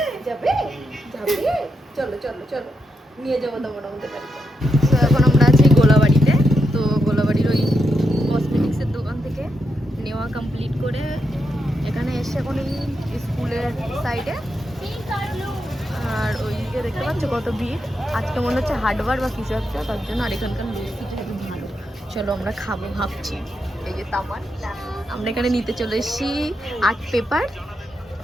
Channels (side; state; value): both; normal; correlation 0.83